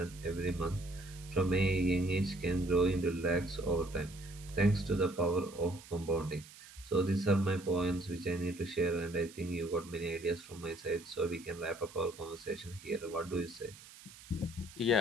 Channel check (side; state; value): right; noise; hiss, 19 dB below the sound